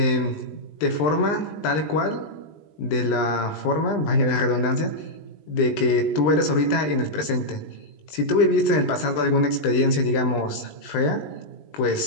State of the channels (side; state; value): right; late; 20 ms